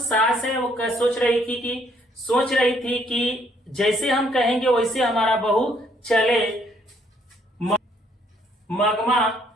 है वो सोच रही थी कि जैसे हम कहेंगे वैसे हमारा बहू चले। मागमा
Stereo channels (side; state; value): both; normal; correlation 0.67